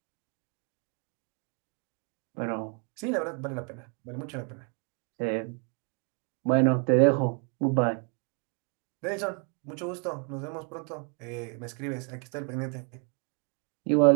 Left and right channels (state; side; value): quieter; left; 39.5 dB